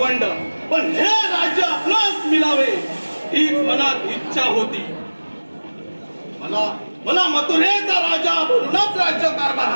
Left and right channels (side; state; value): both; inverted; correlation -1.00